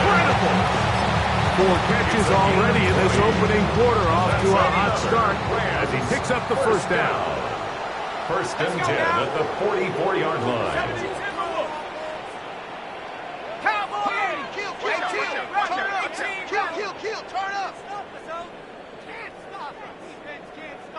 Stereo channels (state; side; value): identical; both; correlation 1.00